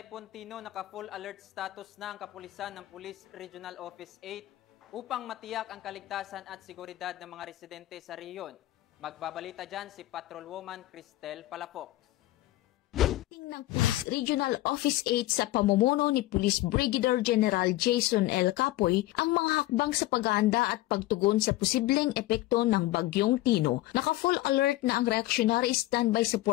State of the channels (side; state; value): right; quieter; 16.9 dB